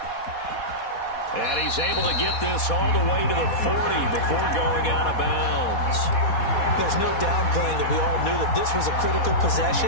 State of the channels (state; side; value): late; right; 4.2 ms